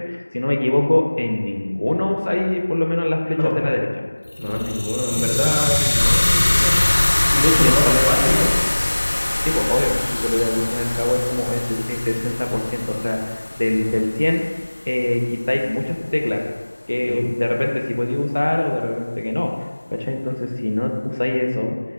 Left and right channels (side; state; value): both; inverted; correlation -1.00